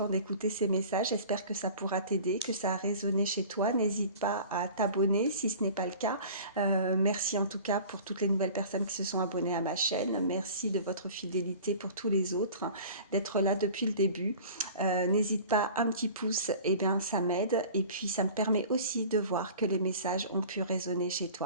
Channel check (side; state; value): both; inverted; correlation -0.42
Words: d'écouter ces messages. J'espère que ça pourra t'aider, que ça a résonné chez toi. N'hésite pas à t'abonner si ce n'est pas le cas. Merci en tout cas pour toutes les nouvelles personnes qui se sont abonnées à ma chaîne. Merci de votre fidélité pour tous les autres, d'être là depuis le début. N'hésite pas, un petit pouce, et bien ça m'aide. Et puis ça me permet aussi de voir que les messages ont pu résonner chez